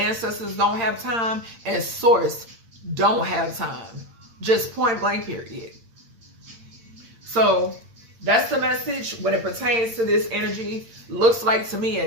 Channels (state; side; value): late; left; 8.7 ms